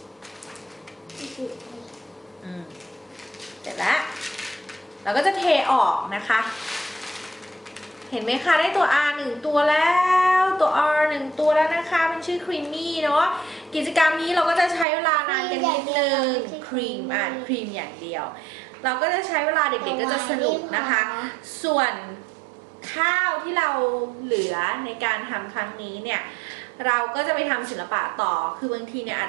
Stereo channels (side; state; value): left; drops out; at 14.9 s